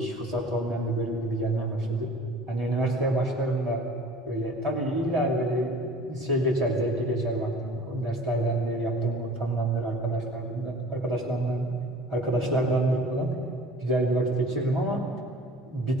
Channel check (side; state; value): both; normal; correlation 0.46